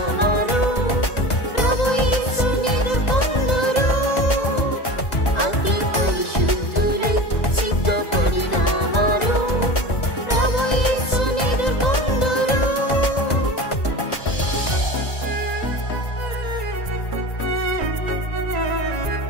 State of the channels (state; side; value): late; right; 2.0 ms